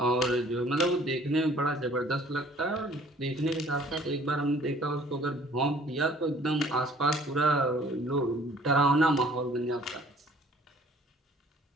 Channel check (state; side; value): normal; both; correlation 0.55